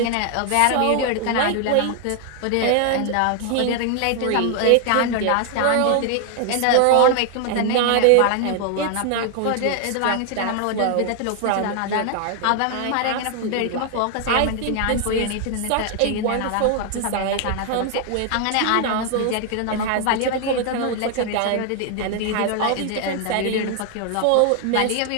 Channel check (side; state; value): both; different; correlation 0.00